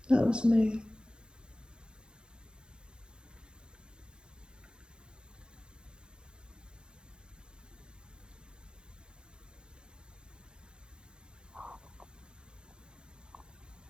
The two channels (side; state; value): left; late; 0.050 ms